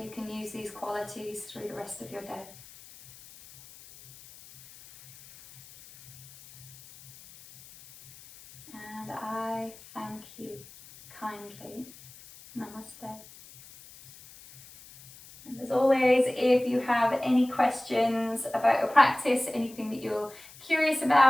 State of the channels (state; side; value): noise; left; hiss, 20 dB below the sound